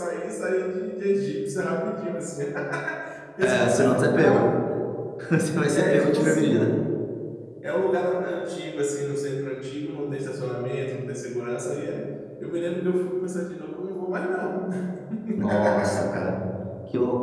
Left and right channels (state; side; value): identical; both; correlation 1.00